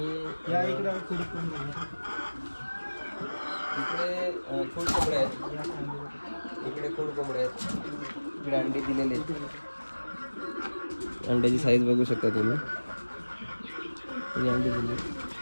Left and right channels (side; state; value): both; inverted; correlation -1.00